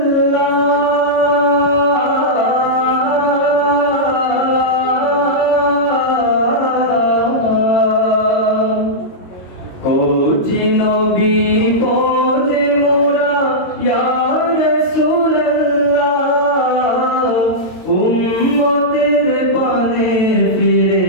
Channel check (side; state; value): right; late; 22 ms